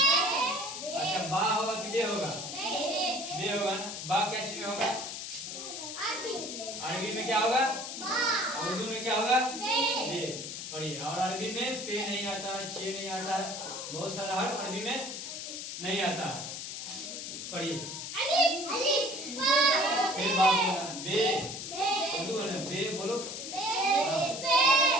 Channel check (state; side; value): noise; left; hiss, 7 dB below the sound